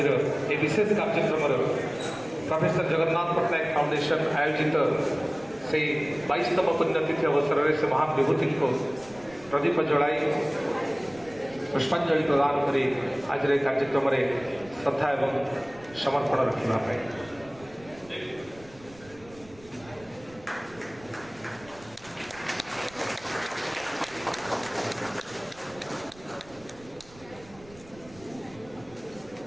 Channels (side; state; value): right; noise; rumble, 23 dB below the sound